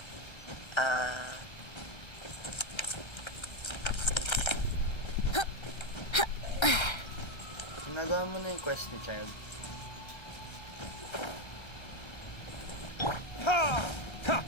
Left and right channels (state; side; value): late; right; 1.3 ms